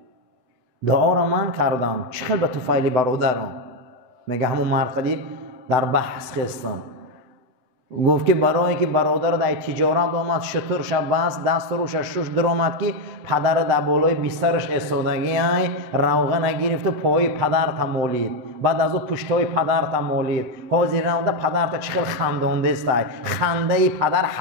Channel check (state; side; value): late; left; 8.0 ms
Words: دعا را من کردم، چه خیلی به طفیل برادرم؟ میگه همون مرقدی در بحث خستم، گفت که برای که برادر در تجارت آمد، شطور شب بست، دست روش شش درآمد که پدر در بالای بسترش ایستادگی های روغن نگرفت و پای پدر تمالید، بعد از او پشتای پدر تمالید، حاضر نموده پدر تا چه خیلی خندانده است. خنده پدر